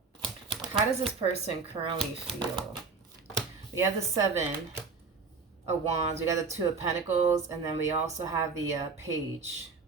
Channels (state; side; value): quieter; left; 4.8 dB